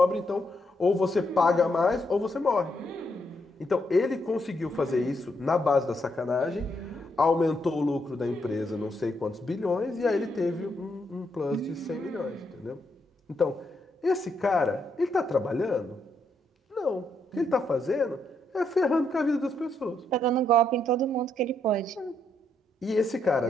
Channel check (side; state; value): both; normal; correlation 0.77